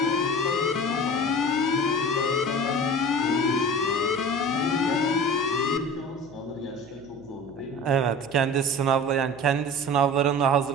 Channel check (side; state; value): right; noise; hum, 22 dB below the sound